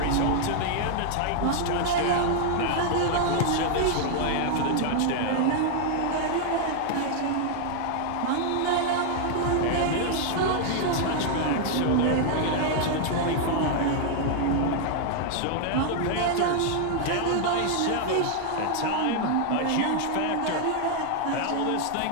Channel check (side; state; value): both; different; correlation 0.00